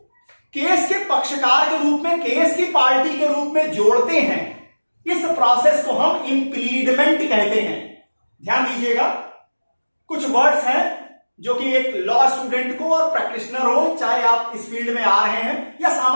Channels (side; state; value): both; inverted; correlation -1.00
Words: केस के पक्षकार के रूप में, केस की पार्टी के रूप में जोड़ते हैं, इस प्रोसेस को हम इंप्लीडमेंट कहते हैं। ध्यान दीजिएगा, कुछ वर्ड्स हैं जो कि एक लॉ स्टूडेंट को और प्रैक्टिशनर हो, चाहे आप इस फील्ड में आ रहे हैं या